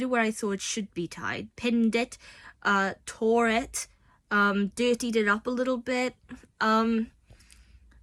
it where I thought it should be tied, pinned it, tore it, dirtied it up a little bit, and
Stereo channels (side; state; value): both; identical; correlation 1.00